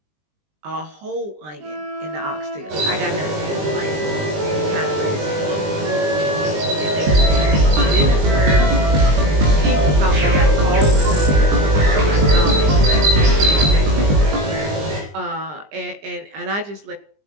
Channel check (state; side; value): late; left; 20 ms